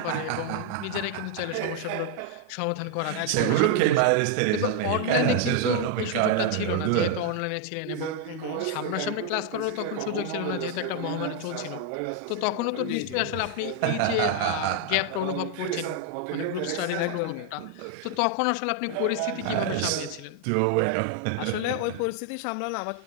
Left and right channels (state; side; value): different; both; correlation 0.00